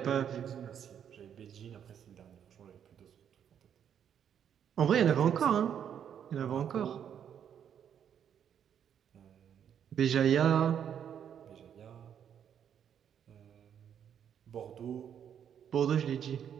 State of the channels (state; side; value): quieter; left; 8.8 dB